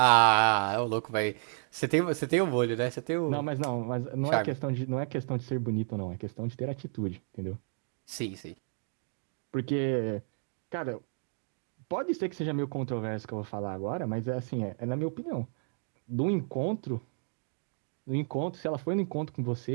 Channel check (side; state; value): left; silent; 57 dB below the other